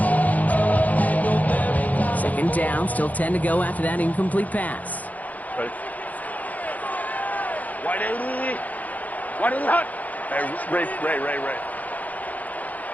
Second down, still 10 to go after that incomplete pass. Right. Wide 80. Wide 80 hot. Hey, Ray.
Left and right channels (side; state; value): right; late; 0.078 ms